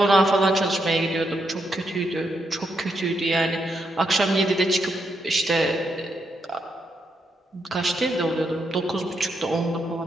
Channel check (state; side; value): normal; both; correlation 0.80